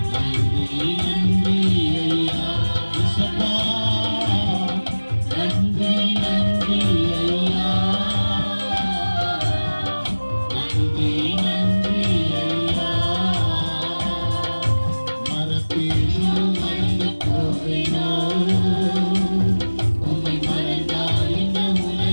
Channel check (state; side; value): inverted; both; correlation -1.00